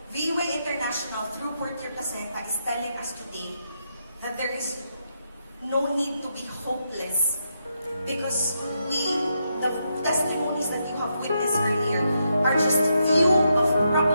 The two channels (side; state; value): both; inverted; correlation -0.81